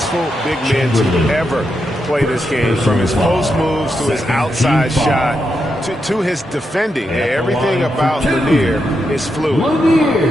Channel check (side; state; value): both; normal; correlation 0.84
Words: big men to ever play this game. From his post moves to his outside shot to his defending. Everything about Lanier is fluid.